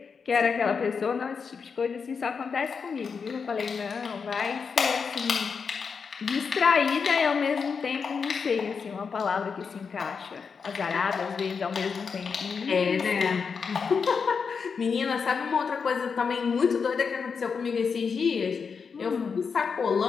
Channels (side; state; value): right; quieter; 5.7 dB